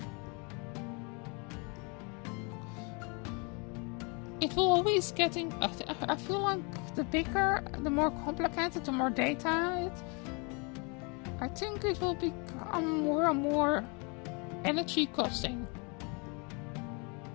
it will always getting. I feel like the bigger, the more complicated, the more data I think it will become more and more energy costing.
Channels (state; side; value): quieter; right; 32.4 dB